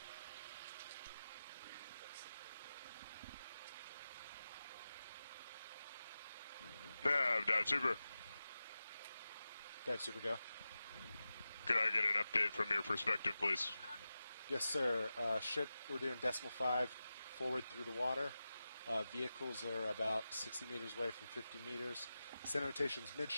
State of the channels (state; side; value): inverted; both; correlation -0.93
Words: Nav, Dive Super. Dive Super, go. Could I get an update from your perspective, please? Yes, sir. Ship, we're doing 0.5 forward through the water. Vehicles are about 60 meters away from 50 meters. Center rotation's